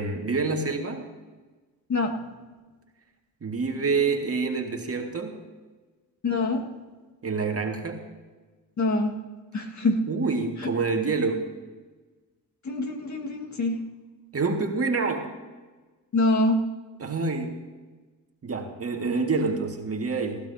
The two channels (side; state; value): both; normal; correlation 0.17